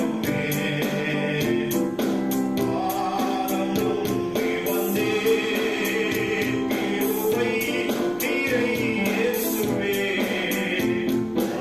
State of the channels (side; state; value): right; noise; rumble, 26 dB below the sound